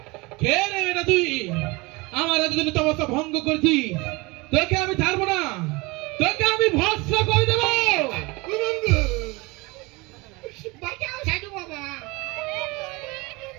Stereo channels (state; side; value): quieter; left; 24.8 dB